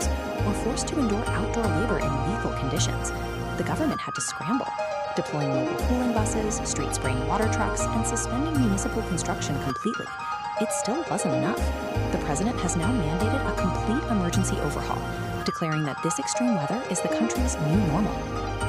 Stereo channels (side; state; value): both; identical; correlation 1.00